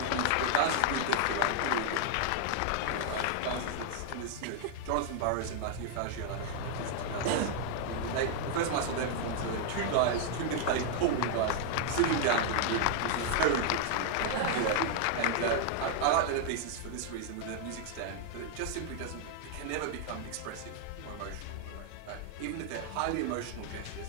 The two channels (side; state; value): both; different; correlation 0.00